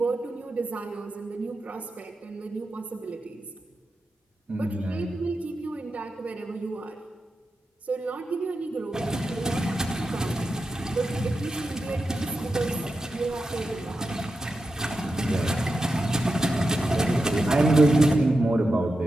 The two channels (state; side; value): normal; both; correlation 0.90